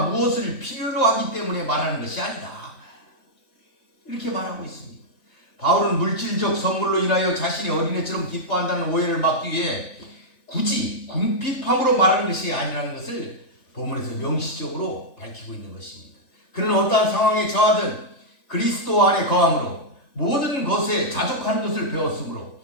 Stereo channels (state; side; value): late; right; 3.5 ms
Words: 무엇을 필요로 하기 때문에 말하는 것이 아니다. 이렇게 말하고 있습니다. 바울은 물질적 선물로 인하여 자신이 어린애처럼 기뻐한다는 오해를 막기 위해 굳이 궁핍함으로 말하는 것이 아니라는 것을 본문에서 명시적으로 밝히고 있는 것입니다. 그는 어떠한 상황에 처하든 그리스도 안에 거함으로 모든 것에 자족하는 것을 배웠으므로